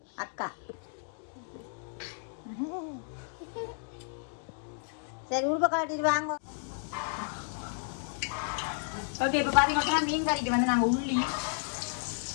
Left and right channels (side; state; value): right; silent; digital silence